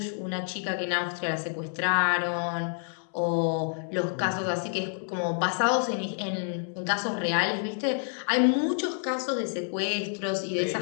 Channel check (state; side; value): silent; right; 59 dB below the other